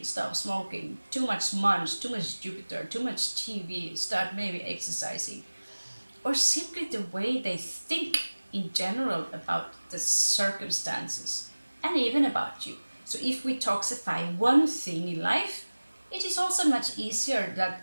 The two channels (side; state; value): both; inverted; correlation -1.00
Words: stop smoking, too much munch, too much Jupiter, too much TV, start maybe exercising. Or simply the way they think in general about the circumstances and even about you. So if we toxify one thing in life, it is also much easier that